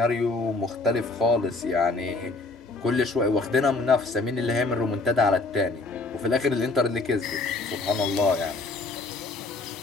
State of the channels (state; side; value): quieter; right; 3.5 dB